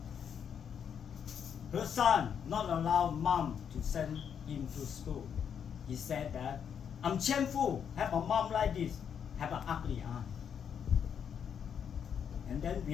Her son not allow mom to send him to school. He said that I'm shameful, have a mom like this, have an ugly aunt. And then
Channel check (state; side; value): quieter; right; 7.8 dB